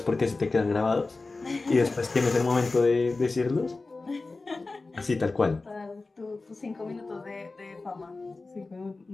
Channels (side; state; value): right; quieter; 3.6 dB